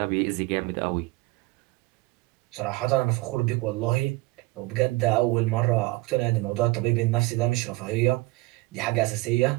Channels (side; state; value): left; quieter; 22.3 dB